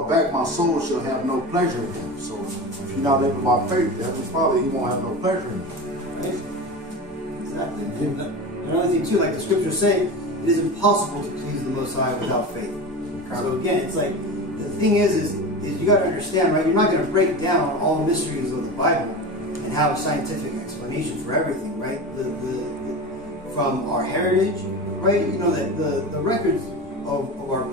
back, my soul shall have no pleasure in him." So if you're not living by faith, the Heavenly Father, he won't have no pleasure in you. Right? Exactly. And another thing too, like the scriptures say, it is impossible to please the Most High without faith. So again, it's like, the thing is you got to understand, right? You're not going to break down all the mysteries of the Bible and have a scientific explanation for everything, right? From our heritage, right? You know that the records of our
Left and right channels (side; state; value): both; normal; correlation 0.28